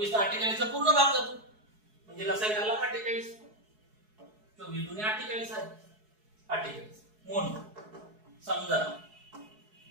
ला 48 चा पूर्ण भाग जातो, म्हणजे लसा आला 48. 24 दुने 48 आहे. 48 म्हणून समजा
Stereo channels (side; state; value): left; late; 4.7 ms